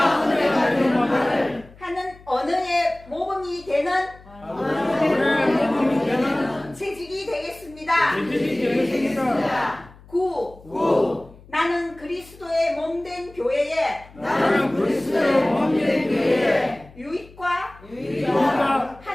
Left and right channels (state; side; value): noise; left; hum, 23 dB below the sound